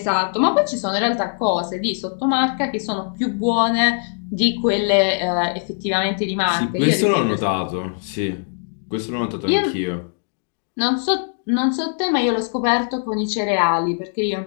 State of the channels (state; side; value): silent; right; digital silence